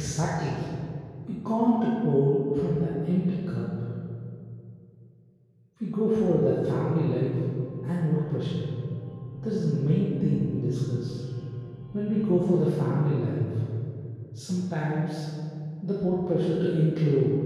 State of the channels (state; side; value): identical; both; correlation 1.00